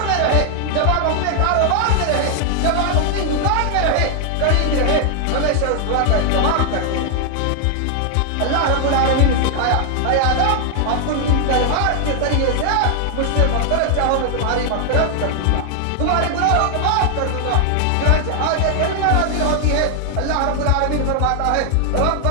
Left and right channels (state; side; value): different; both; correlation 0.00